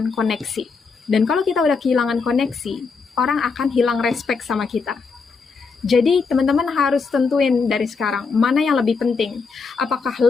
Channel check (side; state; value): right; quieter; 4.9 dB